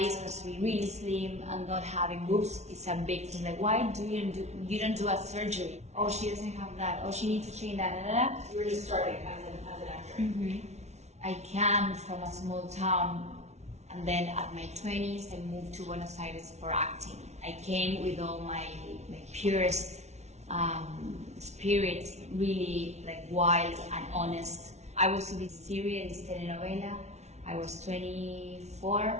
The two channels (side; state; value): left; late; 0.32 ms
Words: is supposed to be really slim and not having boobs is a big thing. Like, why do you don't do a surgery? Oh, she doesn't have that. Oh, she needs to change that. Da, da, da. You were just starting as an actor. Mm-hmm. I came from a small town, and then at my 20s, I moved to Buenos Aires for acting. I came with all my purest spirit, really like wild and honest. I was in this series, this telenovela. I was